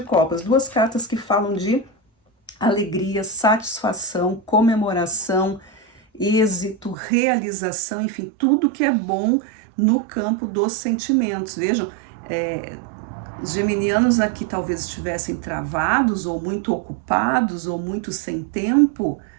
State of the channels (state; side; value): drops out; left; at 7.0 s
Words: copas. 2 cartas que falam de alegria, satisfação, comemoração, êxito, realização, enfim, tudo que é bom no campo dos sentimentos. Vejam, os geminianos aqui talvez estivessem travados, ou muito ocupados, ou muito sem tempo,